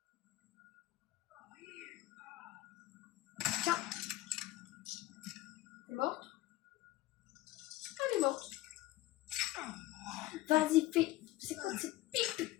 Tiens. T'es morte? Elle est morte. Vas-y, fais. C'est quoi ce pic?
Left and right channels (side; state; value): right; quieter; 16.9 dB